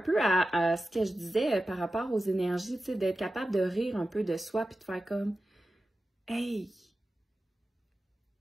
à ce que je disais par rapport aux énergies, tu sais, d'être capable de rire un peu de soi puis de faire comme « Hey! »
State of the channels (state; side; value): normal; both; correlation 0.93